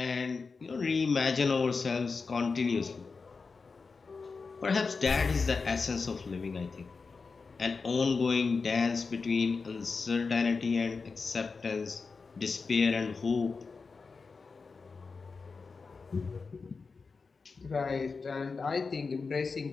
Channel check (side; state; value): right; quieter; 4.6 dB